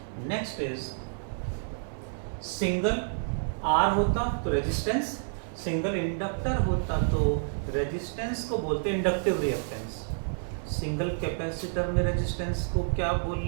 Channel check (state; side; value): silent; left; 58 dB below the other